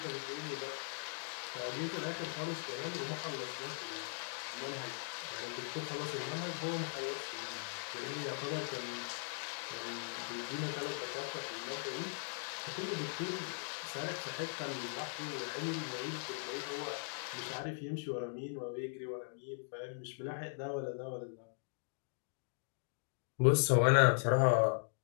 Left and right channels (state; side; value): silent; right; digital silence